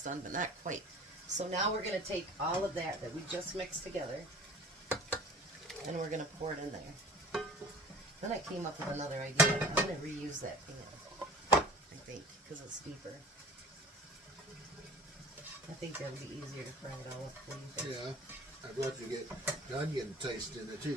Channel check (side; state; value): both; normal; correlation 0.43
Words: done, but not quite. So now we're going to take all of that we just mixed together, and we're going to pour it in there. Then I came up with another idea. I'm going to reuse that pan, I think, because it's deeper. I think that'll be easier to fry it all up. What do you think? Yeah. I'd love to get the onion taste in it